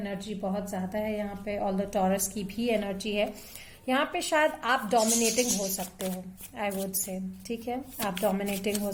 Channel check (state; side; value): identical; both; correlation 1.00